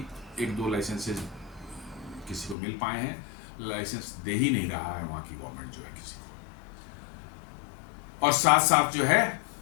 एक दो लाइसेंसेज किसी को मिल पाए हैं, लाइसेंस दे ही नहीं रहा है वहाँ की गवर्नमेंट जो है किसी को। और साथ साथ जो है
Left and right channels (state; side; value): drops out; right; at 2.6 s